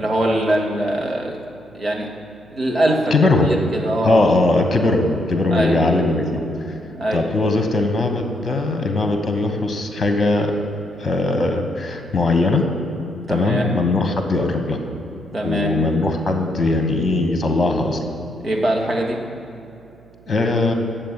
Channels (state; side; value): noise; right; hum, 27 dB below the sound